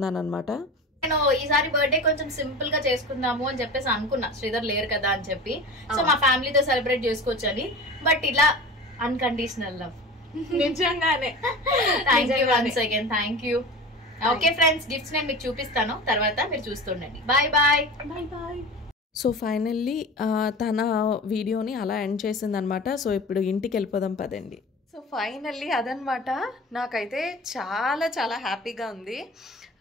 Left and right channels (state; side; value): normal; both; correlation 0.34